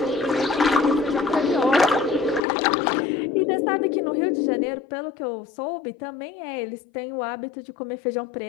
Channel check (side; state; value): right; drops out; at 2.4 s